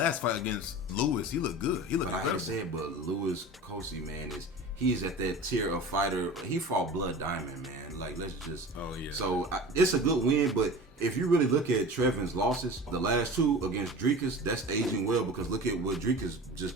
fight against Lewis, he looked good. He looked. But I hate to say it, but Lewis Kosi, man, he's at that tier of fighter. He fought Blood Diamond, man. Like, let's just. Oh yeah. So it's a good win, but if you really look at Trevin's losses, the last 2 against Dricus, that's aging well because look at what Dricus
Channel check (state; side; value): normal; both; correlation 0.36